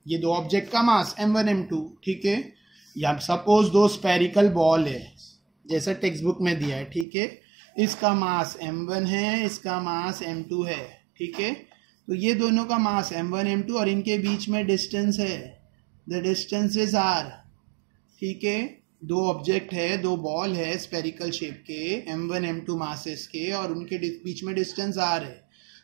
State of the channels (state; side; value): drops out; left; at 7.1 s